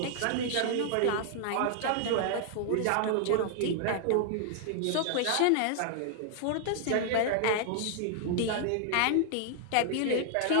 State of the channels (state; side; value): different; both; correlation 0.00